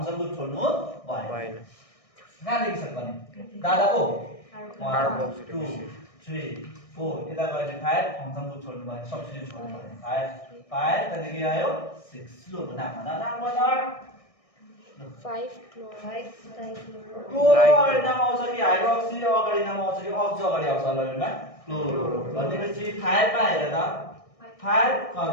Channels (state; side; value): late; right; 1.6 ms